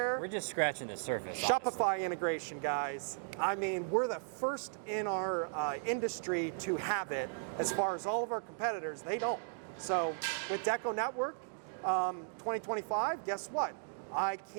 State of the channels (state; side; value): silent; left; digital silence